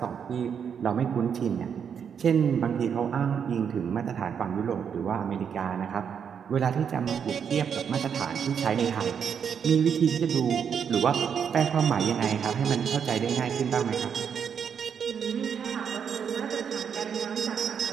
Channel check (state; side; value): quieter; left; 7.4 dB